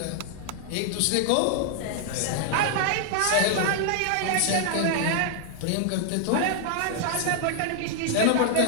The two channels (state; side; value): different; both; correlation -0.01